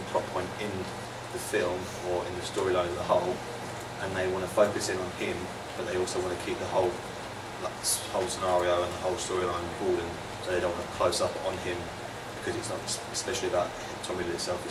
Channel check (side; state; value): both; identical; correlation 1.00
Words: plot point in the film or in the storyline as a whole, and they want to focus in on him, but they also want to keep the whole scenario and the whole storyline broadened, so they don't want to close up on him because it's not especially about Tom Riddle itself,